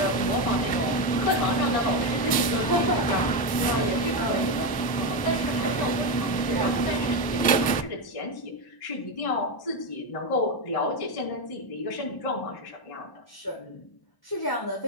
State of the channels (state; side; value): late; right; 1.0 ms